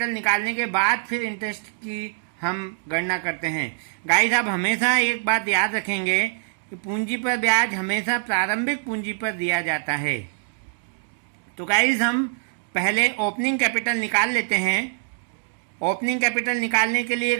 निकालने के बाद फिर इंटरेस्ट की हम गणना करते हैं। गाइस, आप हमेशा एक बात याद रखेंगे कि पूंजी पर ब्याज हमेशा प्रारंभिक पूंजी पर दिया जाता है। तो गाइस, हम पहले ओपनिंग कैपिटल निकाल लेते हैं। ओपनिंग कैपिटल निकालने के लिए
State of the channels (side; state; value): left; silent; digital silence